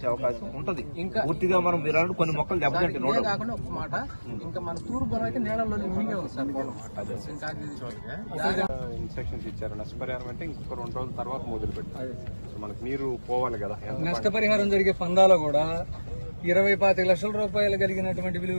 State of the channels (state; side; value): inverted; both; correlation -1.00